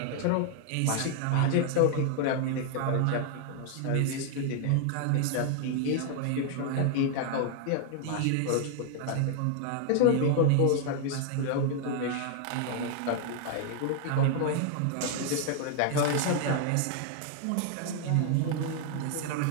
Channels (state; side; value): different; both; correlation 0.00